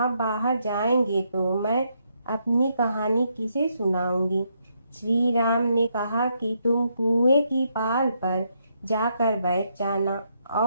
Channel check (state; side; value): inverted; both; correlation -0.77